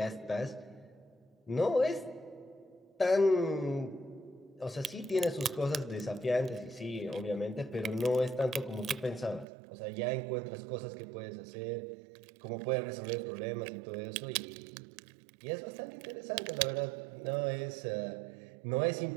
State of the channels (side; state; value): left; drops out; at 9.5 s